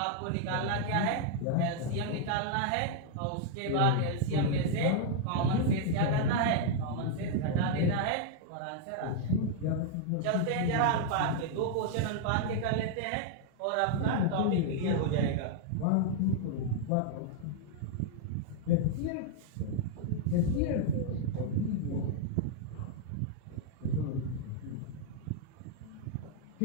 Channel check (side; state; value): both; different; correlation -0.01